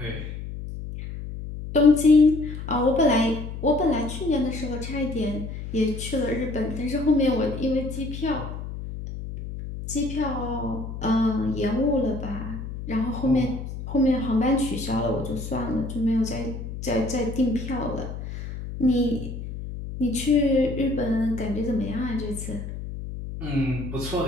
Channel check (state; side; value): noise; left; hum, 8 dB below the sound